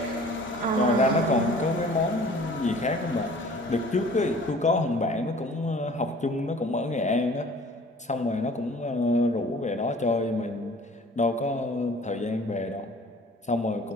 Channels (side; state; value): both; normal; correlation 0.49